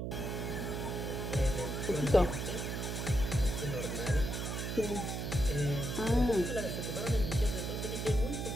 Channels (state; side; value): noise; right; hum, 3 dB below the sound